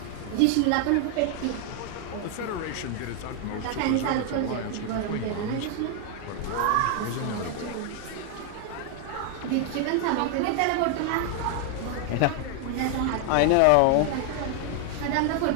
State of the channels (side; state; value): both; different; correlation 0.00